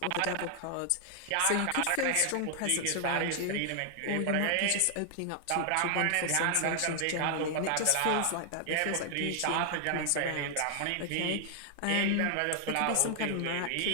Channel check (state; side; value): different; both; correlation 0.00